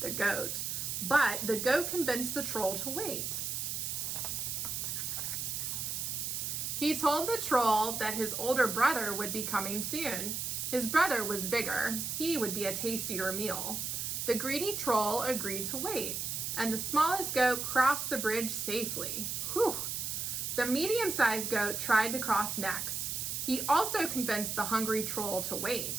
the goat, but the goat convinced the troll to wait. He told the troll that his older brother would be coming soon. His brother was bigger. He would be a tastier meal. The greedy troll agreed to wait, and the smallest goat crossed the bridge safely. Whew! The medium-sized goat tried to cross next. He also convinced the hungry troll to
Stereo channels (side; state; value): right; noise; hiss, 2 dB below the sound